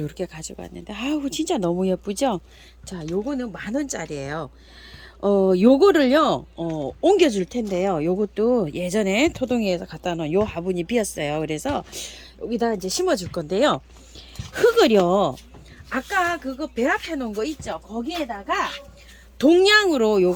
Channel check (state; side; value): identical; both; correlation 1.00